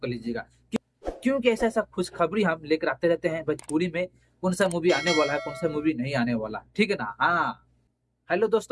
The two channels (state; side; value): identical; both; correlation 1.00